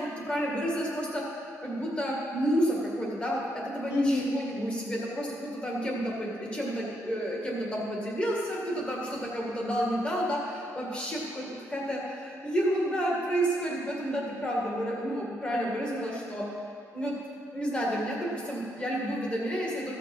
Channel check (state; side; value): normal; both; correlation 0.77